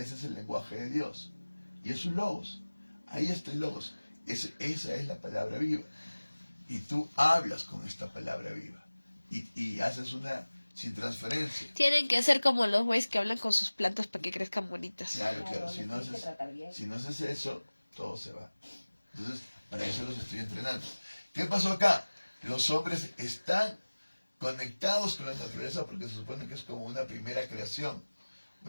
es el lenguaje de Dios. Y es un logos. Ahí está el logos. Esa es la palabra viva. Y tú hablas con esta palabra viva. Y haces una sin transferencia. Tienen que ser como los güeyes que hablan con sus plantas para que crezcan bonitas. Claro. Claro, Si les no tienes que tratar bien. haces eso, todo se va. Entonces, para eso los estoy entrenando. ¿Qué pasó acá? Los hombres están conectados con la naturaleza porque se supone que es como una primera creación.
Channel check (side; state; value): both; inverted; correlation -1.00